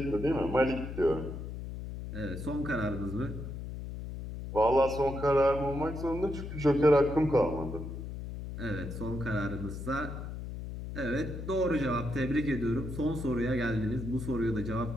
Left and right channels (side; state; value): left; noise; hum, 8 dB below the sound